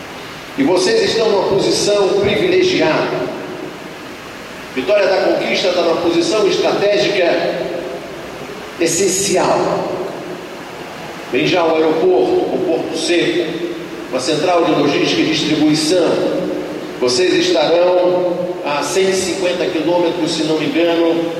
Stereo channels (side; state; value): both; identical; correlation 1.00